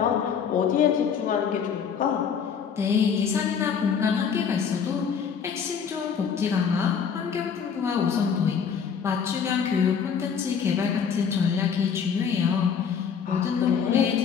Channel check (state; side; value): quieter; right; 7.0 dB